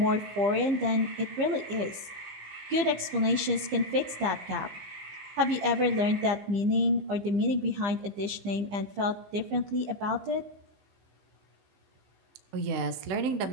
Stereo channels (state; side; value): late; left; 15 ms